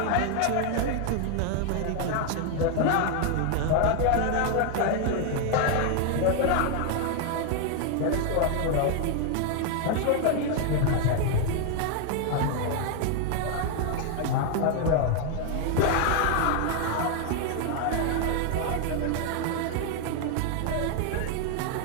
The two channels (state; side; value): different; both; correlation 0.00